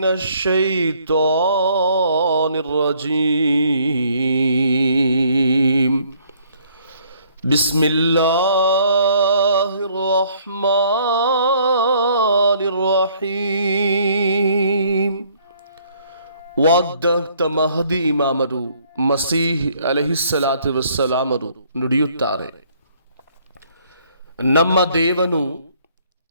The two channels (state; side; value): inverted; both; correlation -0.63